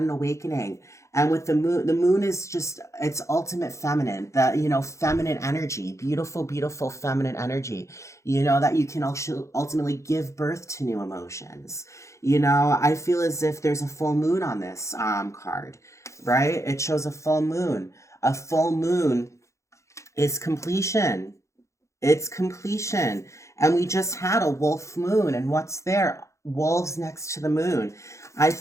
awakening, and with the moon is just it's ultimate feminine, the feminine energy, beautiful, beautiful feminine energy. You know that you can also ultimately give birth to new emotions. You know, I feel as if there's a full moon on this card, right? It shows a full moon. A full moon is completion. It's completion. And we just had a wolf moon. And what's there? Wolves next to the moon. I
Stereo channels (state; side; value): late; right; 0.14 ms